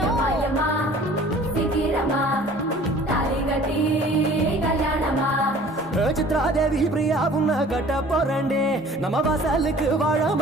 yama, sikirama, taligati kalyanama. Chitradevi Priya உன்ன கட்ட போறண்டே நம்ம வாசலுக்கு வாழ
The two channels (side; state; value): both; normal; correlation 0.49